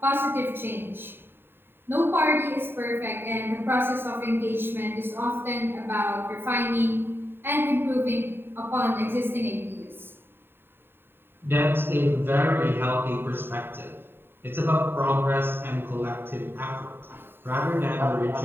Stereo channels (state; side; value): late; left; 0.11 ms